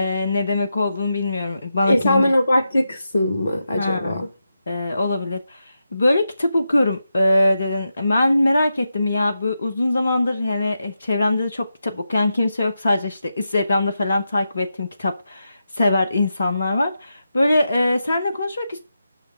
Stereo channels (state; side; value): inverted; both; correlation -0.88